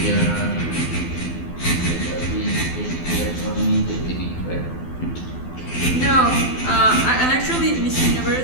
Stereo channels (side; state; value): right; late; 12 ms